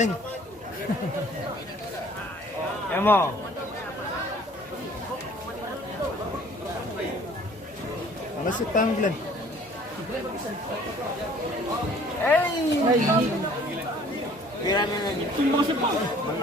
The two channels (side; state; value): both; normal; correlation 0.54